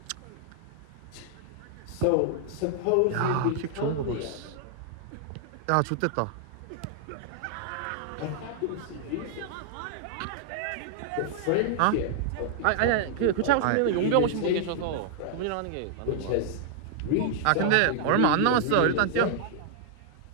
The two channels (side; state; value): both; different; correlation -0.01